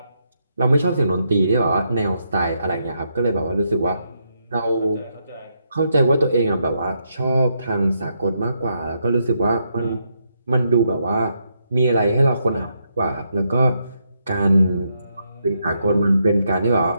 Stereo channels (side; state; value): both; inverted; correlation -0.79